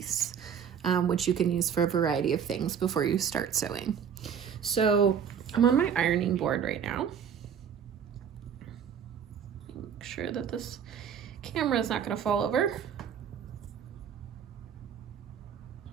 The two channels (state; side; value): quieter; left; 7.8 dB